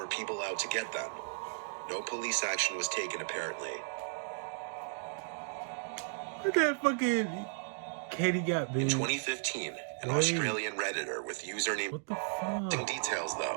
people out to get them. No police action was taken apparently. Look at fucking Katie got big. In 2015, an Australian Redditor with username... What the fuck? Some details,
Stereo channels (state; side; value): silent; left; digital silence